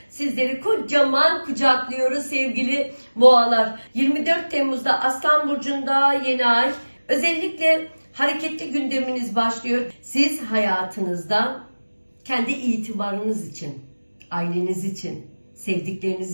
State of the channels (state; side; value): inverted; both; correlation -1.00